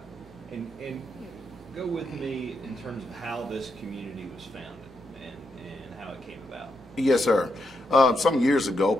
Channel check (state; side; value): normal; both; correlation 0.82